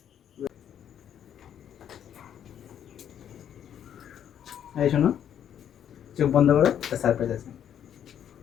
এই শোনো, চোখ বন্ধ করো, একটা সারপ্রাইজ আছে।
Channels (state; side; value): quieter; right; 9.6 dB